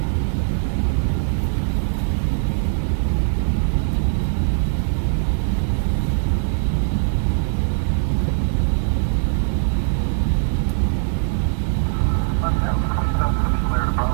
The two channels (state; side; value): silent; left; digital silence